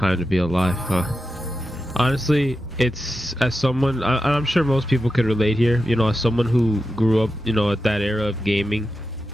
to be alive, huh? Honestly, it's as someone, I'm sure most people could relate here, you know, as someone who grew up, you know, at that era of gaming,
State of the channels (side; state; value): both; normal; correlation 0.90